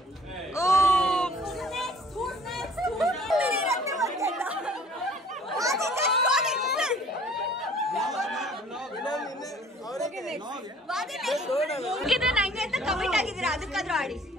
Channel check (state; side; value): normal; both; correlation 0.54